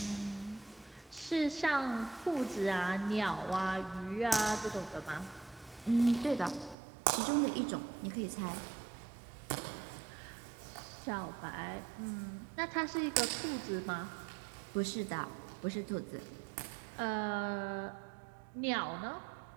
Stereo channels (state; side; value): drops out; left; at 6.8 s